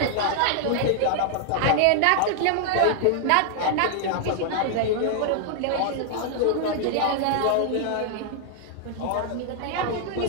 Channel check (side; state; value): both; different; correlation 0.00